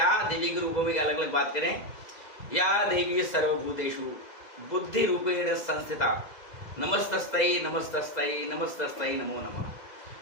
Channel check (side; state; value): right; late; 2.0 ms